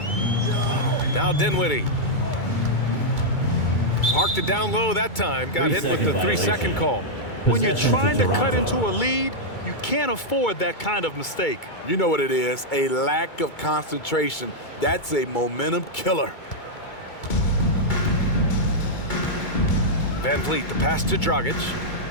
Now Dinwiddie. Parked it down low that time. Got hit with the 3-second call. When you're trying to cut into a lead, you can't afford that kind of mistake. You know what it is, a lack of concentration. That's a momentum killer. Van Vliet, the pass to Dragic.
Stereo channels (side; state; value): right; late; 2.3 ms